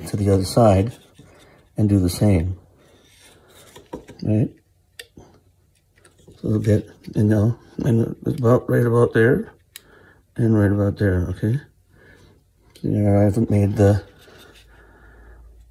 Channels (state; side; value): identical; both; correlation 1.00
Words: the other side and do the same, right? A little bit, and now, and it's about right about there, and right about there, okay? There, I haven't made the,